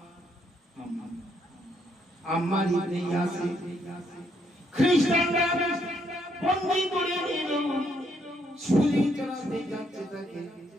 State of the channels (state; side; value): normal; both; correlation 0.73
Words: আম্মার ইবনে ইয়াসির। খ্রিস্টানরা বন্দী করে নিল, ছুরি চালাতে যাচ্ছে